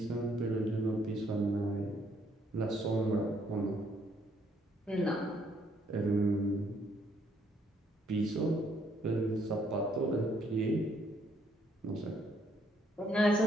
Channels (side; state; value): both; normal; correlation 0.69